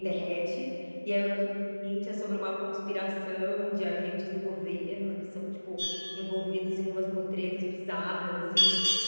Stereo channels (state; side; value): inverted; both; correlation -1.00